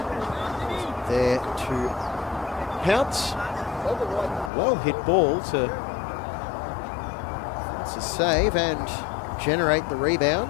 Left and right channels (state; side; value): drops out; right; at 4.5 s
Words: there to pounce. Well hit ball to save and generate the